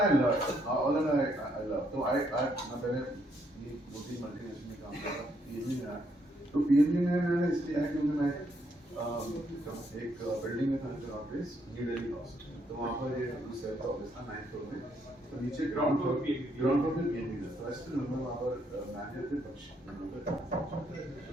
लव तो आई मैं पहले ये 2-3 मल्टीनेशनल में काम कर रहा था, तो पीएनबी में मैंने इसलिए आया क्योंकि मैं एक बिल्डिंग में था जो ऑफिस न्यू दिल्ली हाउस, तो वहाँ पर ये सेल्फ ऑफिस था 9th फ्लोर में, तो नीचे ग्राउंड फ्लोर में पीएनबी था, तो ऐसे नंबर वहाँ पर मैनेजर थे पक्ष,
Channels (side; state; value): both; normal; correlation 0.73